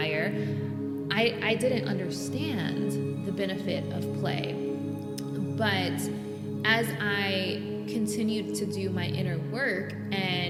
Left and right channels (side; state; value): both; identical; correlation 1.00